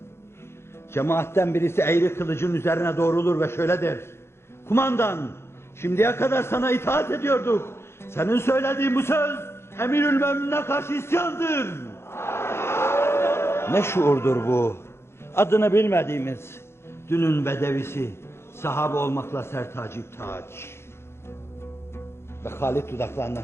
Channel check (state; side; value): late; right; 0.12 ms